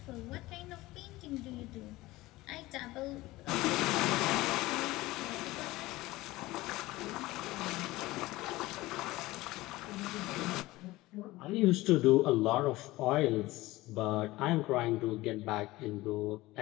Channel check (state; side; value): quieter; right; 18.9 dB